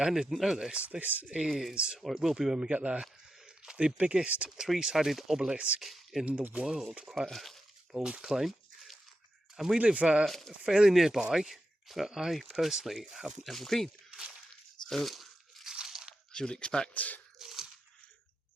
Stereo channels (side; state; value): both; normal; correlation 0.88